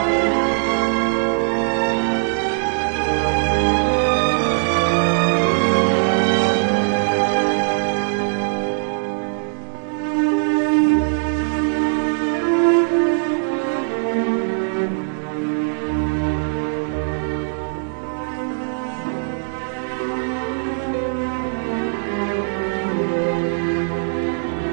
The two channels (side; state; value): left; silent; 65 dB below the other